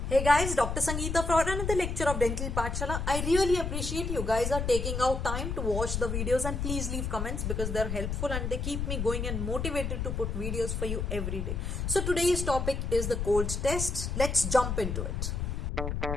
Hey guys, Dr. Sangeeta for another lecture of Dental Pathshala. I really appreciate you guys are taking out time to watch the videos, and please leave comments because they're helpful and they keep me going and motivated to put videos for you every day. So today's topic is the cold test. Let's jump into it.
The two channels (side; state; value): left; noise; rumble, 2 dB below the sound